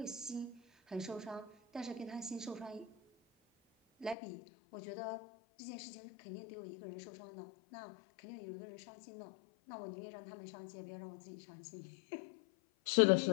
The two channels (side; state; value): right; drops out; at 4.2 s